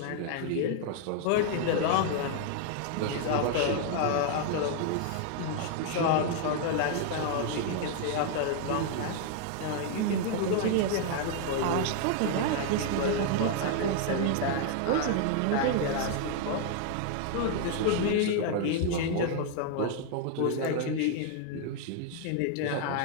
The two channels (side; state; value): both; different; correlation 0.00